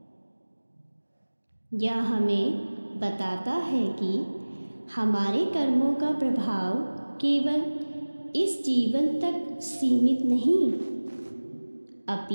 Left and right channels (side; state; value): both; inverted; correlation -1.00